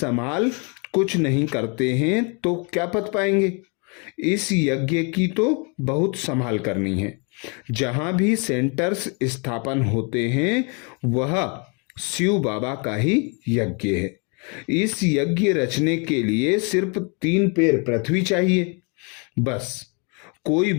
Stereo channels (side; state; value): right; quieter; 34.2 dB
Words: कुछ नहीं करते हैं तो क्या पद पाएंगे। इस यज्ञ की तो बहुत संभाल करनी है। जहाँ भी सेंटर्स स्थापन होते हैं वह शिव बाबा का ही यज्ञ है। इस यज्ञ रचने के लिए सिर्फ 3 पैर पृथ्वी चाहिए बस। कोई